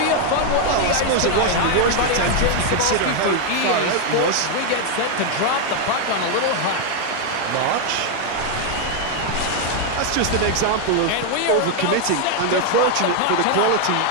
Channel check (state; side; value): different; both; correlation 0.01